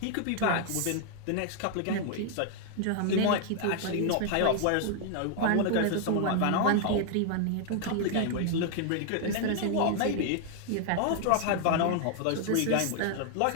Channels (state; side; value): different; both; correlation 0.00